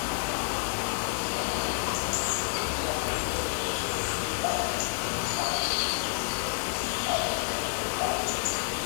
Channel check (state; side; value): silent; right; digital silence